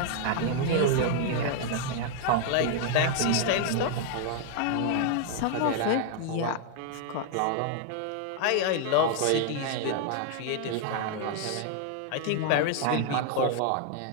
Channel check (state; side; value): different; both; correlation 0.00